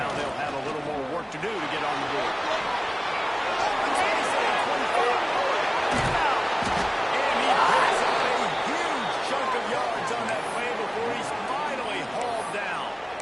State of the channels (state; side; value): identical; both; correlation 1.00